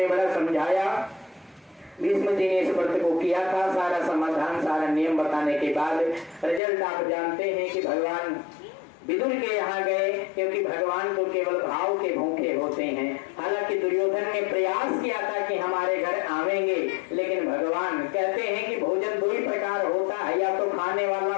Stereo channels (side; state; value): right; drops out; at 6.6 s